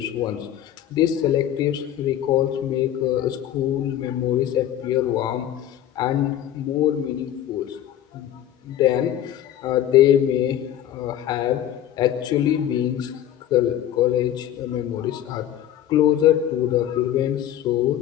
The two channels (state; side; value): quieter; right; 11.4 dB